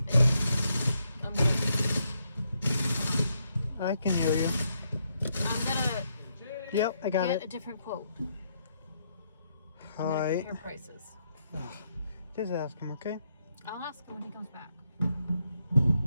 I can hear you. I'm going to Yep, I got get a it. different quote. All I'm going to right. compare prices. Just ask him, okay? I'll ask him when he comes back.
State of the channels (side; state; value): both; inverted; correlation -0.78